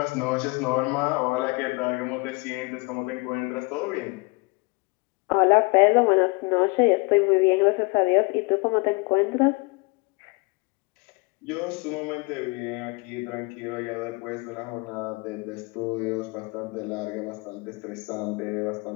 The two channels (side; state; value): right; quieter; 28.7 dB